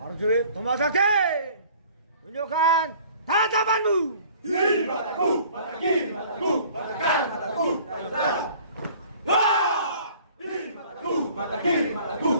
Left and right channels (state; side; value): inverted; both; correlation -0.51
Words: Prajurit Tomasaki, tunjukkan tatapanmu. Kiri mataku, mata kiri mataku, mata kanan mataku, saudara. Wah! Kiri mataku, mata kiri mataku,